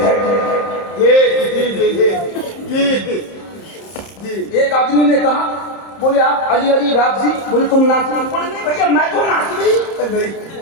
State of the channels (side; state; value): right; late; 30 ms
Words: ہے. ایک آدمی نے کہا بولے آپ علی علی رافضی بولے تم ناسبی. بولے نہیں بھیا میں تو ناسبی.